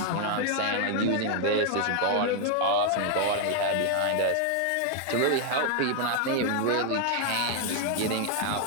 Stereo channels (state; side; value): different; both; correlation 0.00